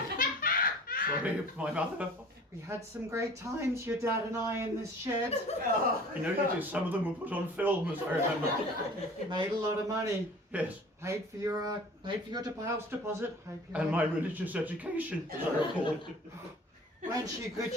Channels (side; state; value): both; normal; correlation 0.45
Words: Sorry, my mother. We had some great times, your dad and I, in this shed. I know you did. Some of them were put on film, as I remember. Made a lot of money. Yes. Paid for your house deposit. And my religious education, as I recall. Weren't you good?